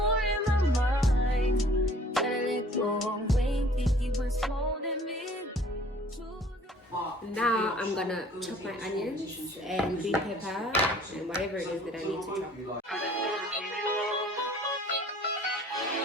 in my mind. Gotta let go of Wayne, think he was holding me. Now I'm gonna chop my onions and green pepper and whatever it is that I need to chop.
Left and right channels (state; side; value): normal; both; correlation 0.53